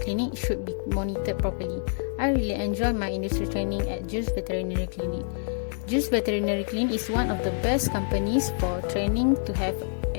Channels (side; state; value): right; silent; digital silence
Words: should be monitored properly. I really enjoy my industry training at Jules Veterinary Clinic. Jules Veterinary Clinic is one of the best companies for training to have